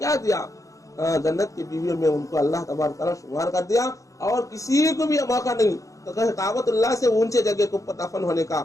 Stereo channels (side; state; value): right; late; 0.16 ms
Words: دیا، جنت کی بیویوں میں ان کو اللہ تبارک تعالیٰ شمار کر دیا، اور کسی کو بھی موقع نہیں تو کہ کعبۃ اللہ سے اونچے جگہ کے اوپر دفن ہونے کا،